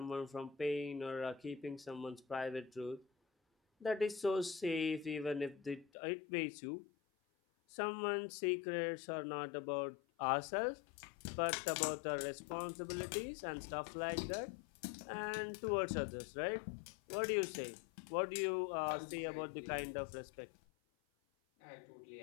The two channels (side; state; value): right; drops out; at 5.9 s